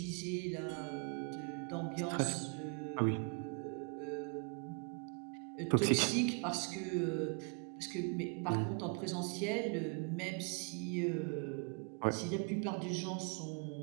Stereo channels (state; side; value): quieter; left; 37.2 dB